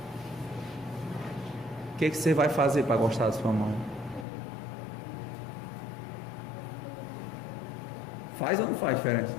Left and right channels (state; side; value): drops out; right; at 4.2 s